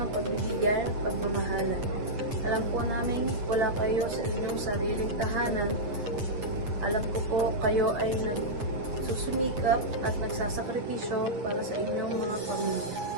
ng pagbibigay at pagmamahalan. Alam po namin wala kayo sa inyong sariling tahanan. Alam ko po kayo ay nagsusumikap at nagsasakripisyo para sa inyong mga pamilya.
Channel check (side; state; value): left; late; 8.6 ms